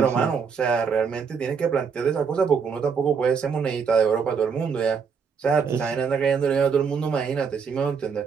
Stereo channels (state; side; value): quieter; left; 6.1 dB